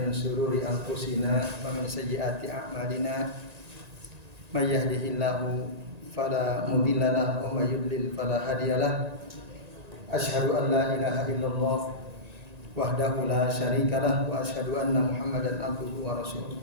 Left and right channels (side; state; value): left; late; 1.9 ms